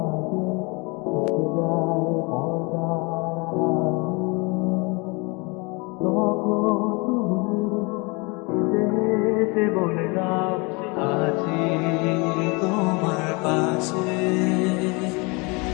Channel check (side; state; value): right; quieter; 28.7 dB